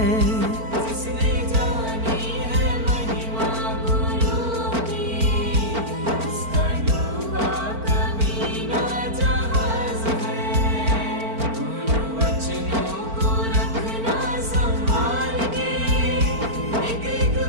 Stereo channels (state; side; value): late; left; 4.4 ms